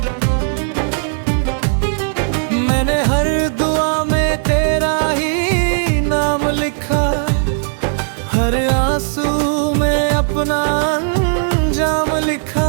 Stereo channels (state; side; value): silent; left; 68 dB below the other